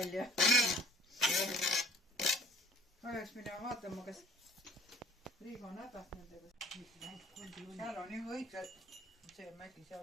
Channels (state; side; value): normal; both; correlation 0.50